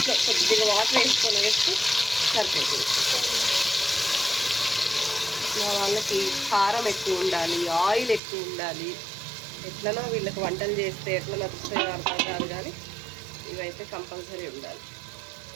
కొద్దిగా వాటర్ వేసుకొని వేస్తే సరిపోతుంది. మా వాళ్ళకి కారం ఎక్కువ ఉండాలి, ఆయిల్ ఎక్కువ ఉండాలి. ఎట్లనో వీళ్ళకి వంటలు చేస్తే ఎట్లా నచ్చుతాయో అర్థం కాదు, కానీ ఇవైతే కంపల్సరీ ఉండాలి.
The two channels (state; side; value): drops out; left; at 8.2 s